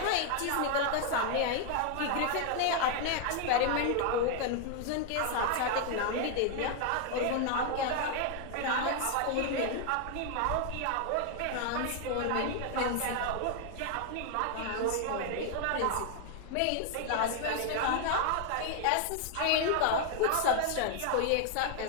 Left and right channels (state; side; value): different; both; correlation 0.00